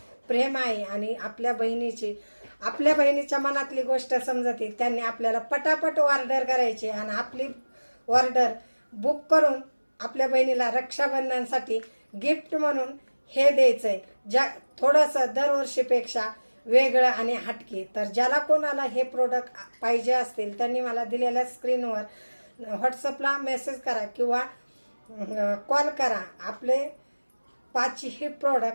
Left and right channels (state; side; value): inverted; both; correlation -1.00